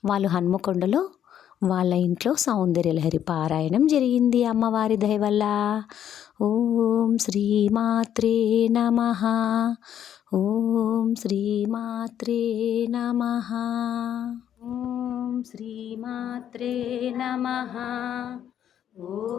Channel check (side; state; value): right; quieter; 10.0 dB